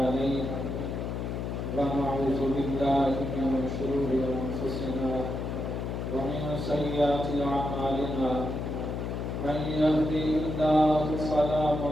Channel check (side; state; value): left; noise; hum, 3 dB below the sound